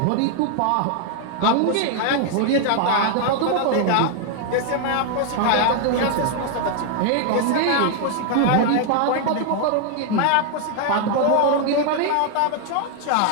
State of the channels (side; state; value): both; different; correlation 0.00